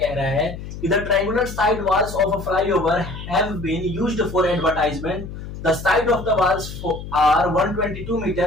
रहा है कि the triangular side walls of a flyover have been used for advertisement. The side of the walls are 122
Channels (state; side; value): noise; left; hum, 10 dB below the sound